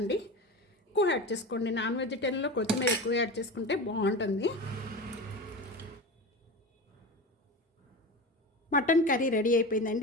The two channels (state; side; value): normal; both; correlation 0.27